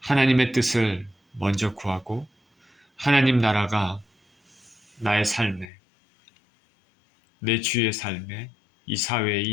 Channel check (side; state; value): right; drops out; at 5.7 s